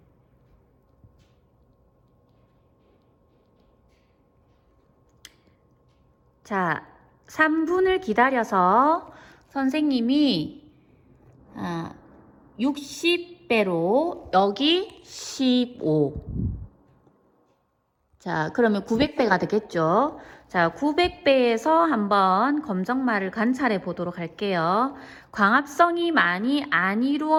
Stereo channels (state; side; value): identical; both; correlation 1.00